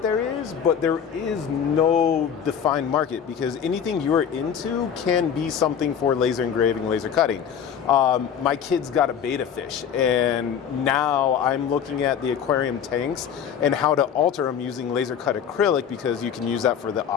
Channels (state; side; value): quieter; right; 8.1 dB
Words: there is, but there is no defined market because anything you're into can be something for laser engraving, laser cutting. My kids got a betta fish, and now I'm looking at the aquarium tanks and how to alter them using laser cut acrylic because you can use that for the